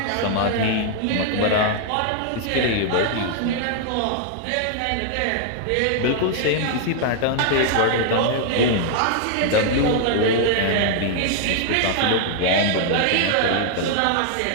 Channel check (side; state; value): both; different; correlation -0.01